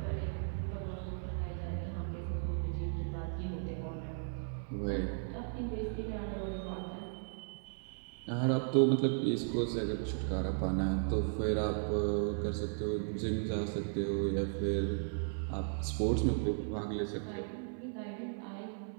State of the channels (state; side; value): silent; left; 54 dB below the other